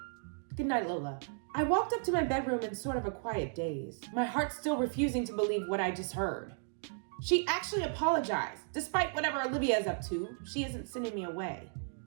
Good night, Lola. I walked up to my bedroom in sort of a quiet daze, my heart still refusing to believe what I just heard. She actually apologized. Despite whatever Olivia is up to, she isn't sending me away.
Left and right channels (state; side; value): silent; left; 55 dB below the other